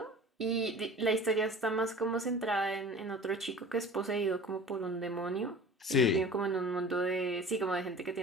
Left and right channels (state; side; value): normal; both; correlation 0.40